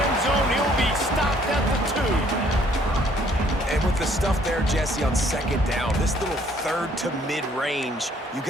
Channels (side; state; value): both; normal; correlation 0.62